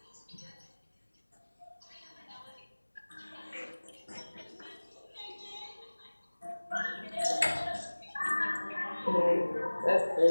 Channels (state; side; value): inverted; both; correlation -1.00